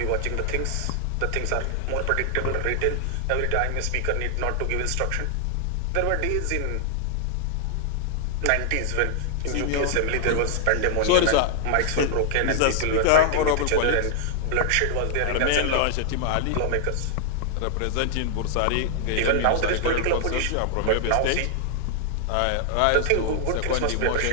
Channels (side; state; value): both; different; correlation 0.00